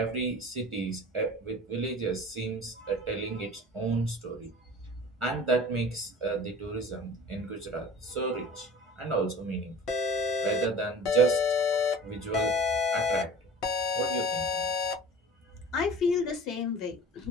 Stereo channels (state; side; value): normal; both; correlation 0.41